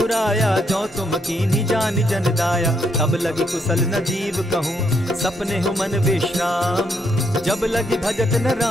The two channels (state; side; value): normal; both; correlation 0.75